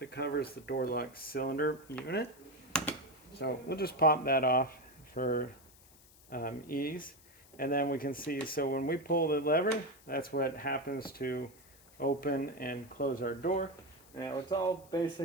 that covers the door lock cylinder unit. So we'll just pop that off for ease. And then we can see, so when we pull the lever, that's what happens to open and close our door. Now it's all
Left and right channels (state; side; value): noise; left; hiss, 25 dB below the sound